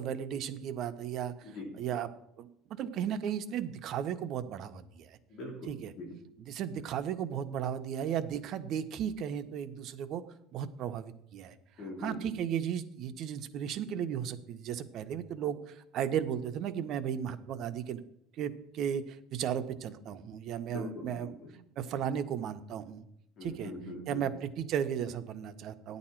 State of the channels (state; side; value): quieter; left; 8.1 dB